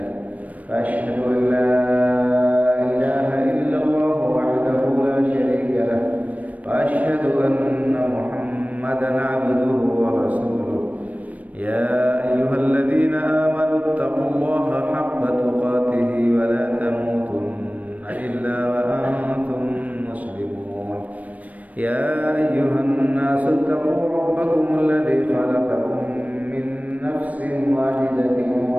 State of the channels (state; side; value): late; left; 0.070 ms